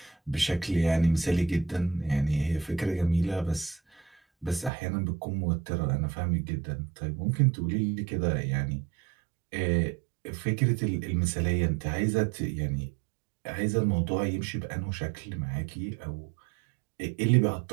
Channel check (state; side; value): drops out; left; at 4.7 s